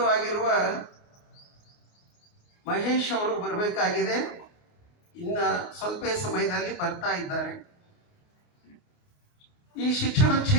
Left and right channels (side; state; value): right; late; 28 ms